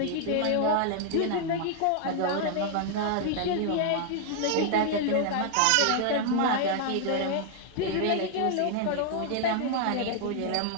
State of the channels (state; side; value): different; both; correlation 0.00